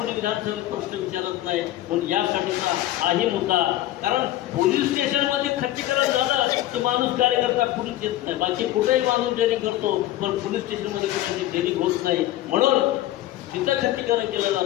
विधानसभेत प्रश्न विचारत नाही. पण यासाठीचा हाही मुद्दा, कारण पोलीस स्टेशनमध्ये खच्चीकरण झालं की माणूस कार्यकर्ता कुणीच येत नाही. बाकी कुठेही माणूस डेअरिंग करतो, पण पोलीस स्टेशनमध्ये कुणाची डेअरिंग होत नाही, म्हणून तिथं खच्चीकरण केलं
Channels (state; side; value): quieter; right; 14.6 dB